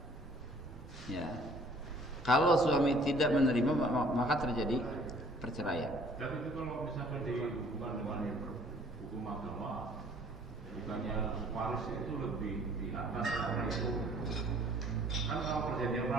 Ya. Kalau suami tidak menerima maka terjadi perceraian. Dan itu kalau misalkan dihubungkan dengan hukum agama, bukannya waris itu lebih di atas karena itu kan kalau perjanjian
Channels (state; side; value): normal; both; correlation 0.56